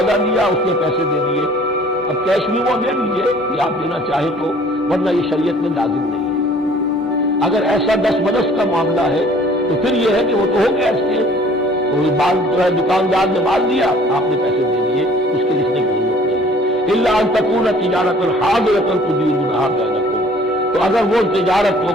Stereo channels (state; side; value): normal; both; correlation 0.54